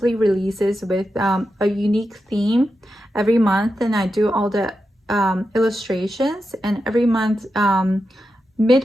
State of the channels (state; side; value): normal; both; correlation 0.89